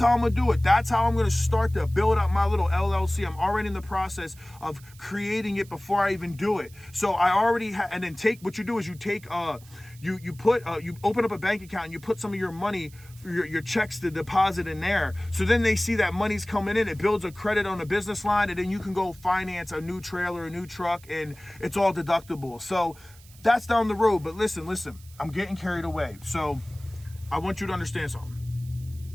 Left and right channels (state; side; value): noise; right; hiss, 24 dB below the sound